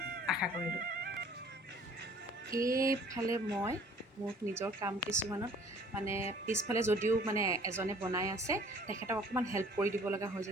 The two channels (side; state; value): both; normal; correlation 0.54